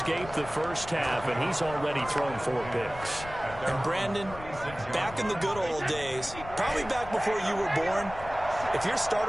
the first half, and he's already thrown 4 picks. And Brandon, back in the good old days, probably back before you were born, if your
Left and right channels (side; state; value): left; noise; rumble, 14 dB below the sound